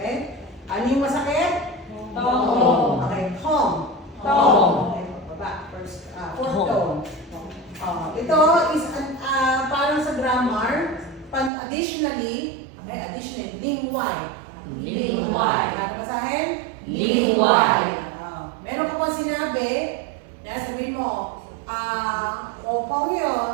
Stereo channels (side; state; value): left; drops out; at 11.5 s